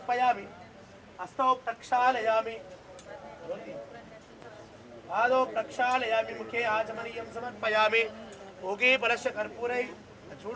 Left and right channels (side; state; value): both; identical; correlation 1.00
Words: हस्तौ प्रक्षालयामि पादौ प्रक्षालयामि मुखे आचमनीयं समर्पयामि भोगे फलस्य कर्पूरै